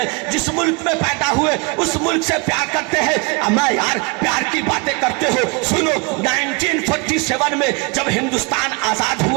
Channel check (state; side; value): quieter; left; 29.7 dB